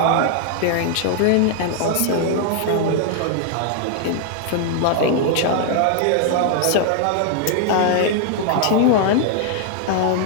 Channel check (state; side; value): different; both; correlation 0.00